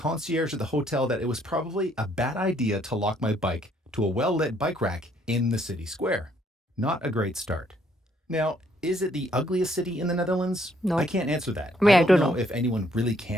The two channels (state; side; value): normal; both; correlation 0.67